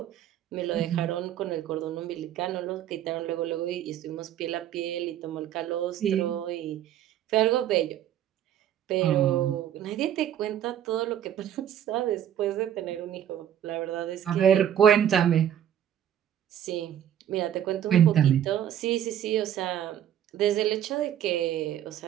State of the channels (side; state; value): left; quieter; 10.5 dB